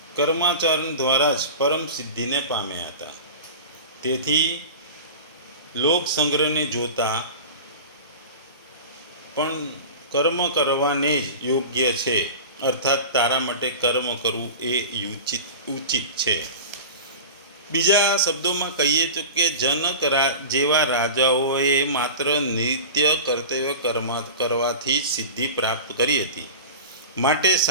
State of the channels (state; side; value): inverted; both; correlation -0.33